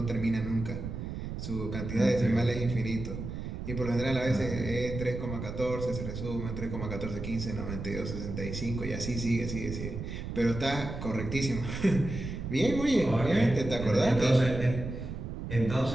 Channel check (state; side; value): noise; right; rumble, 6 dB below the sound